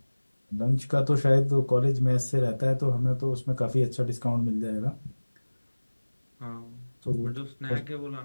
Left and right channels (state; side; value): inverted; both; correlation -1.00